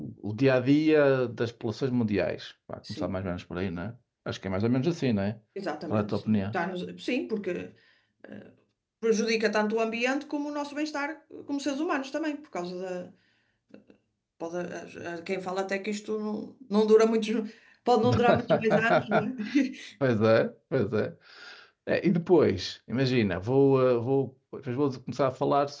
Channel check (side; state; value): both; identical; correlation 1.00